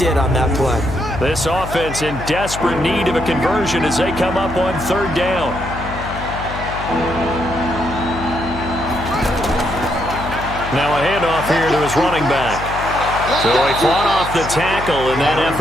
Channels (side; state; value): left; noise; hum, 9 dB below the sound